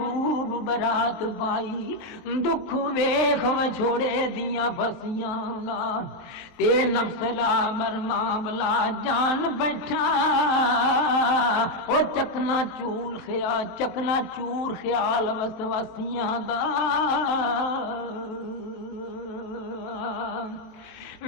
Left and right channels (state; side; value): late; right; 23 ms